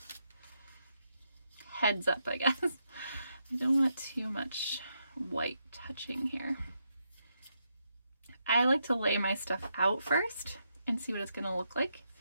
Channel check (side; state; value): both; inverted; correlation -0.81